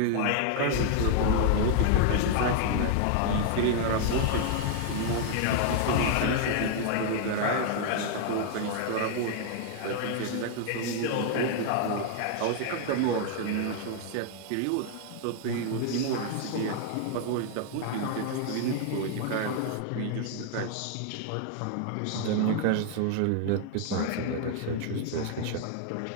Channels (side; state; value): both; different; correlation 0.00